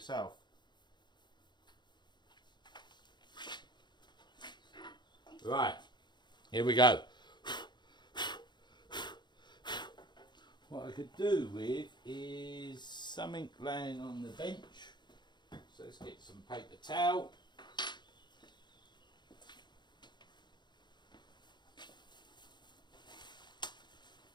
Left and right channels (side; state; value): right; late; 0.21 ms